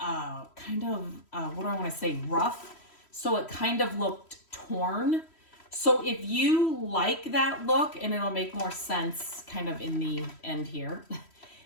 kind of, what do I want to say, rough. So it kind of looked torn. So if you like that look, and it'll make more sense kind of in the end here.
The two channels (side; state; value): right; late; 3.1 ms